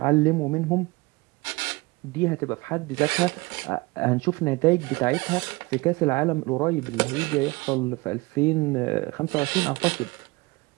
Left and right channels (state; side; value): quieter; left; 23.8 dB